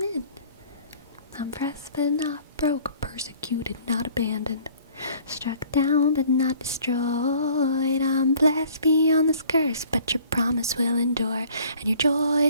I'm pressed but not broke, persecuted, not abandoned. Struck down but not destroyed. I'm blessed beyond this curse, but your promise will endure, and your joy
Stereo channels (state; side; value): inverted; both; correlation -0.54